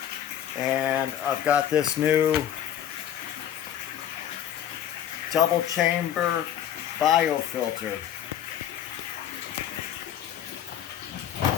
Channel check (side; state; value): right; quieter; 10.4 dB